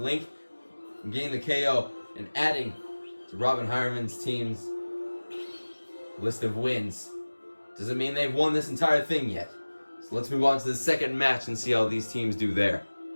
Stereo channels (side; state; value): both; inverted; correlation -1.00